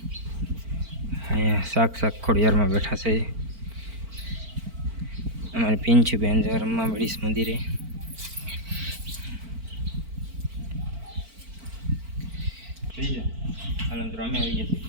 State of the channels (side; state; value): left; late; 4.5 ms